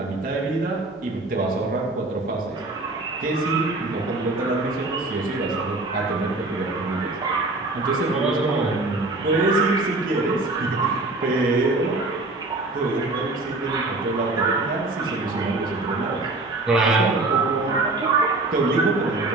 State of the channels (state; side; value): quieter; left; 3.0 dB